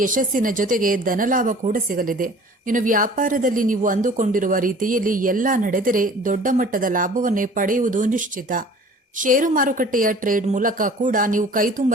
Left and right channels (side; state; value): both; normal; correlation 0.47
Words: ಯಶಸ್ಸಿನ ಜೊತೆಗೆ ಧನಲಾಭ ಕೂಡ ಸಿಗಲಿದೆ. ಇನ್ನು ವ್ಯಾಪಾರದಲ್ಲಿ ನೀವು ಅಂದುಕೊಂಡಿರುವ ರೀತಿಯಲ್ಲಿ ಎಲ್ಲ ನಡೆದರೆ ದೊಡ್ಡ ಮಟ್ಟದ ಲಾಭವನ್ನೇ ಪಡೆಯುವುದು ನಿಶ್ಚಿತ. ಷೇರು ಮಾರುಕಟ್ಟೆಯ ಟ್ರೇಡ್ ಮೂಲಕ ಕೂಡ ನೀವು ಕೈತುಂಬ